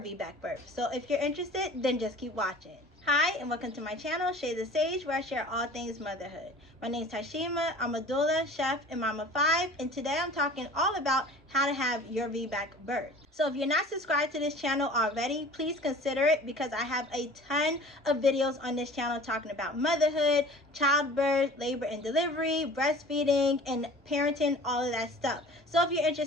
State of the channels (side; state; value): both; normal; correlation 0.44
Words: birth. So if you're interested, then just keep watching. Hi, and welcome to my channel, Shade the Sage, where I share all things motherhood. My name is Tashima. I'm a doula, chef, and mama of 5, and today I'm talking all about how to have your VBAC birth. So if you're not subscribed to this channel already, please consider it because I have a ton of videos on this channel talking about motherhood, childbirth, labor and delivery, breastfeeding, and parenting, all of that stuff. So if you're